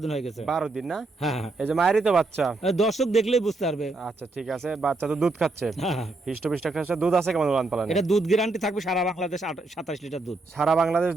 দিন হয়ে গেছে। 12 দিন না? হ্যাঁ হ্যাঁ। এই যে মায়েরই তো বাচ্চা? দর্শক দেখলেই বুঝতে পারবে। আচ্ছা ঠিক আছে, বাচ্চা তো দুধ খাচ্ছে? হ্যাঁ হ্যাঁ। হিষ্টপিষ্ট খাচ্ছে। দুধ আছে কেমন উলান পালানে? এটা দুধ গ্যারান্টি থাকবে সারা বাংলাদেশ 27 লিটার দুধ। সারা বাংলাদেশ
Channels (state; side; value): quieter; left; 3.2 dB